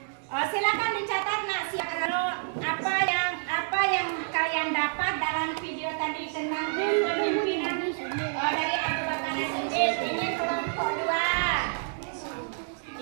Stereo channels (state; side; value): silent; left; digital silence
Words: Silakan dicatat nak, apa yang kalian dapat dalam video tadi tentang kepemimpinan dari Abu Bakar As-Siddiq. Ini kelompok